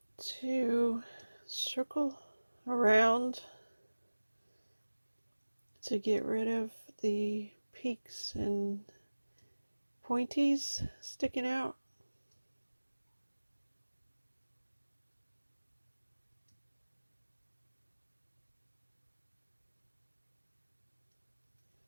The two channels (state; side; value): inverted; both; correlation -1.00